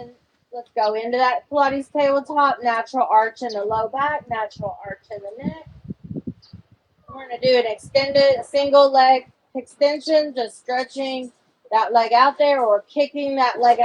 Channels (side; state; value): both; identical; correlation 1.00